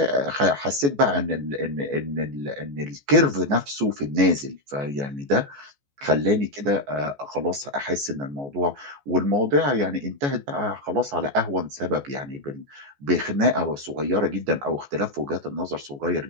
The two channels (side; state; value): left; late; 14 ms